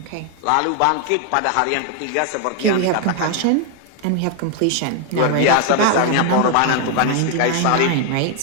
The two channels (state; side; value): different; both; correlation 0.01